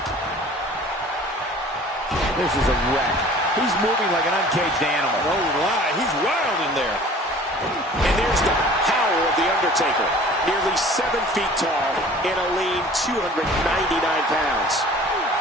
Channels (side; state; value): both; normal; correlation 0.47